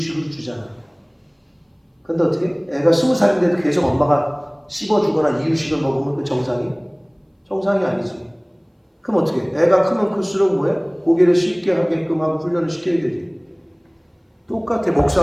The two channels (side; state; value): both; identical; correlation 1.00